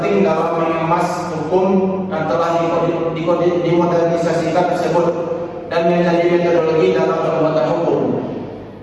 dalam mengemas hukum yang telah dimodernisasikan tersebut dan menjadi metodologi dalam pembuatan hukum.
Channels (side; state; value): both; identical; correlation 1.00